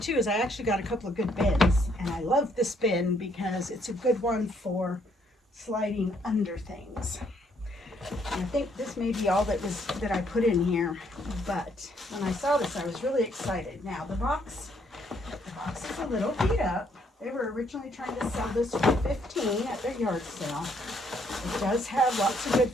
too is I actually got a couple of good bins. And I love this bin because it's a good one for sliding under things. And I think this may be all that I put in here. But when I saw this, I was really excited. Now the box is a little beat up. They were originally trying to sell this for $15 at their yard sale. It does have lots of good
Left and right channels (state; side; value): normal; both; correlation 0.69